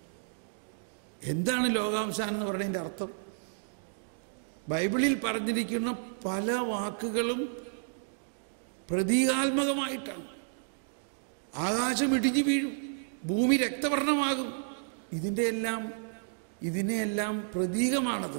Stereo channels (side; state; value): left; silent; digital silence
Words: എന്താണ് ലോകാവസാനം എന്ന് പറയുന്നതിൻ്റെ അർത്ഥം? ബൈബിളിൽ പറഞ്ഞിരിക്കുന്ന പല വാക്കുകളും പ്രതീകാത്മകമായിട്ടാണ്. ആകാശം ഇടിഞ്ഞു വീഴും, ഭൂമി രക്തവർണ്ണമാകും. ഇതിനെയെല്ലാം